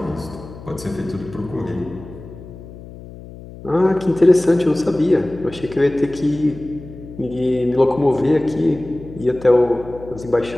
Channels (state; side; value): noise; left; hum, 16 dB below the sound